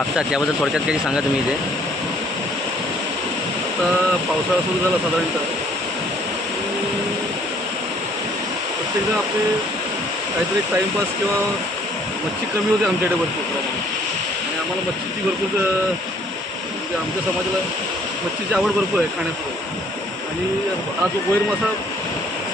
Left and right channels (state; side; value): normal; both; correlation 0.61